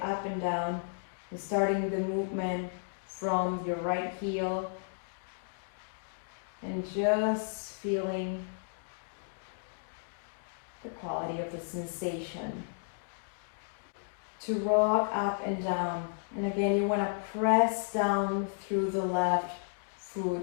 up and down, starting the movement from your right heel and just feeling the quality of the sensation. To rock up and down. And again, you want to press down through the left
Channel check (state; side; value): silent; right; digital silence